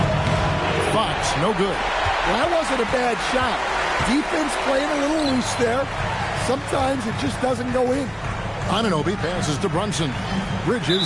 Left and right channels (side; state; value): both; identical; correlation 1.00